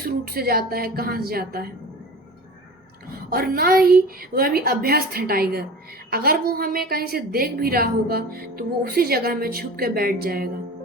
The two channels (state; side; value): normal; both; correlation 0.36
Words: रूट से जाता है, कहाँ से जाता है, और ना ही वह अभी अभ्यस्त है टाइगर। अगर वो हमें कहीं से देख भी रहा होगा तो वो उसी जगह में छुप के बैठ जाएगा,